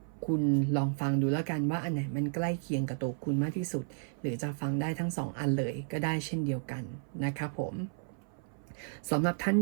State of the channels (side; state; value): left; silent; 56 dB below the other